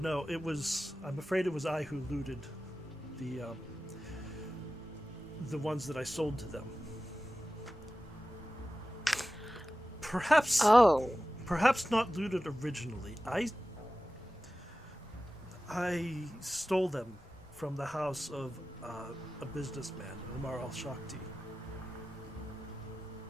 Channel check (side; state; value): both; normal; correlation 0.95